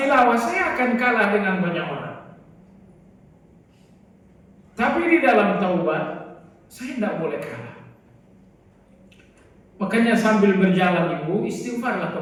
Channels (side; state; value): both; identical; correlation 1.00